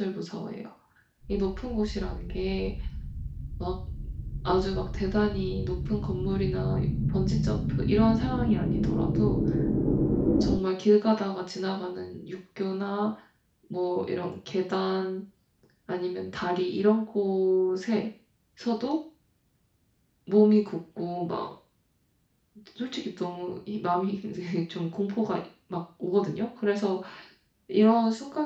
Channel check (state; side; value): identical; both; correlation 1.00